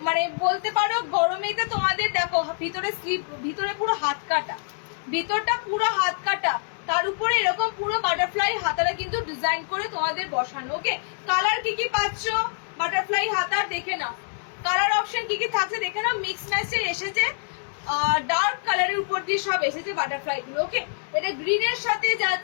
মানে বলতে পারো গরমেতে তোমাদের দেখো ভিতরে স্লিভ, ভিতরে পুরো হাত কাটা, ভিতরটা পুরো হাত কাটা, তার উপরে এরকম পুরো বাটারফ্লাই হাতাটা কিন্তু ডিজাইন করে তোমাদের বসানো। ওকে, কালার কি কি পাচ্ছ বাটারফ্লাই হাতার দেখে নাও, কালার অপশন কি কি থাকছে দেখে নাও। মিক্স ম্যাচে এসেছে, ডার্ক কালারের উপর দিয়ে সব এসেছে বাটারফ্লাই গুলো। ওকে, এটা গ্রিনের সাথে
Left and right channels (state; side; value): silent; right; digital silence